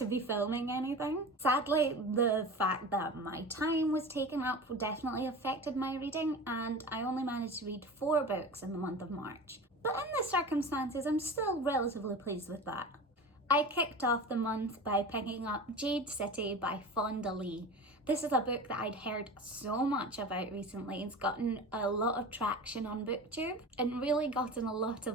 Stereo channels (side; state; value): both; normal; correlation 0.33